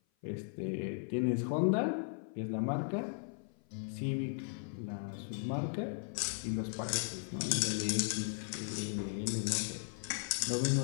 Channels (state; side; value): silent; right; 53 dB below the other